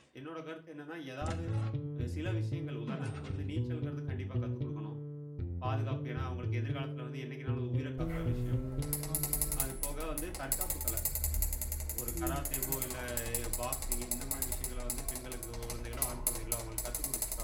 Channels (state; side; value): identical; both; correlation 1.00